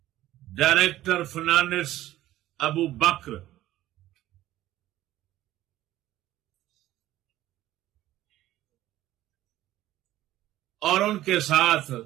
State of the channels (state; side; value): quieter; left; 14.7 dB